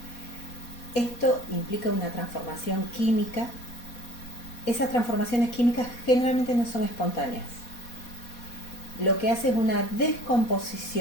Esto implica una transformación química. Esas transformaciones químicas generalmente no son espontáneas. Lo que hace es una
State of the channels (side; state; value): right; late; 4.2 ms